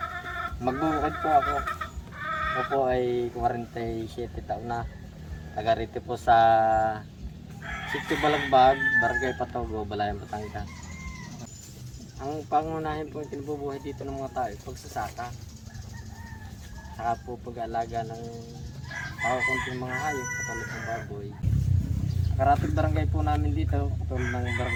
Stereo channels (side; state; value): both; identical; correlation 1.00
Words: Magbubukid po ako. Ako po ay 47 taon na. Taga rito po sa Sitio Balagbag, Barangay Patogo, Balayan, Batangas. Ang pangunahin po yung kinabubuhay dito ng mga tao, pagsasaka. Saka po pag-aalaga ng kunting mga hayop, katulad ng baboy. Karatig barangay po namin dito, katulad ng